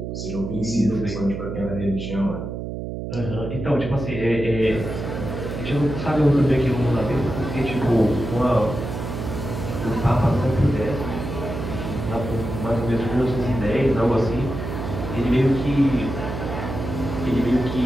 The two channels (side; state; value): right; noise; hum, 6 dB below the sound